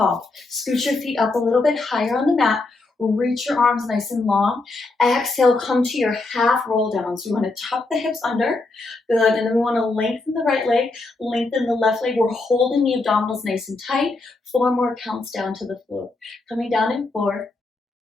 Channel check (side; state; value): right; quieter; 3.3 dB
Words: Scoot your feet up a little bit higher on the mat. Reach your arms nice and long. Exhale, come to your half roll down. So we want to tuck the hips under. Good. And then we want to lengthen the right leg, lengthen the left leg. We're holding the abdominals nice and tight. 4 more counts down to the floor. Coming down in 4,